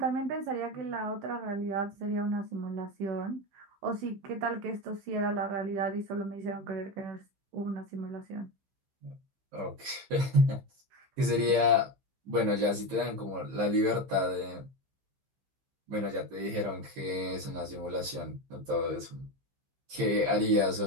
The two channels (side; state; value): left; late; 15 ms